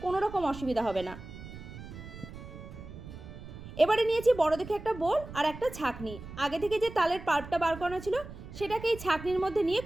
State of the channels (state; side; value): noise; right; rumble, 13 dB below the sound